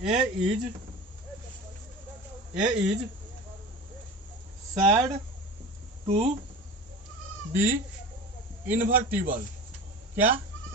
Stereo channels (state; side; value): normal; both; correlation 0.33